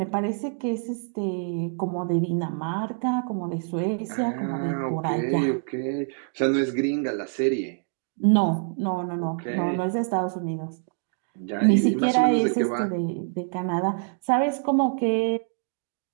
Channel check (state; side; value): silent; left; 61 dB below the other